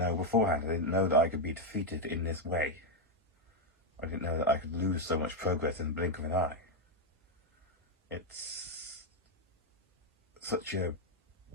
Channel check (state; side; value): normal; both; correlation 0.03